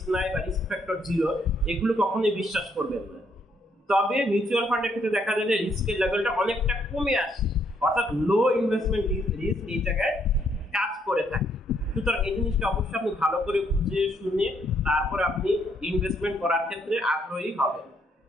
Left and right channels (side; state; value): both; normal; correlation 0.71